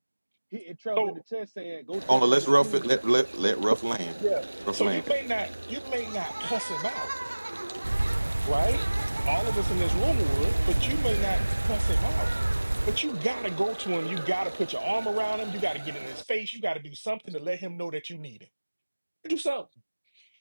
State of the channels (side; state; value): both; inverted; correlation -1.00